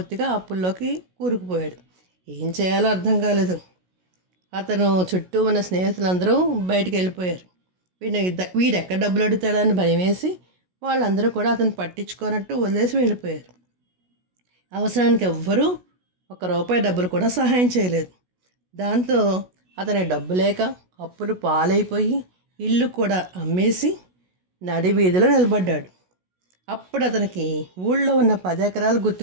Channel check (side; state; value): left; late; 16 ms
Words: అప్పుల్లోకి కూరుకుపోయాడు. ఏం చేయాలో అర్థం కాలేదు. అతను చుట్టూ ఉన్న స్నేహితులందరూ బయటికి వెళ్ళిపోయారు. వీడెక్కడ డబ్బులు అడుగుతాడని భయం వేసి వాళ్ళందరూ కూడా అతను పట్టించుకోనట్టు వదిలేసి వెళ్ళిపోయారు. అవసరానికి ఎవ్వరూ ₹1 డబ్బులు కూడా సహాయం చేయలేదు. దాంతో అతని డబ్బు లేక అప్పులు పాలైపోయి ఇల్లు కూడా అమ్మేసి నడి వీధిలో నిలబడ్డాడు. అప్పుడు అతనికి ఊళ్ళో ఉన్న 10 ఎకరాలు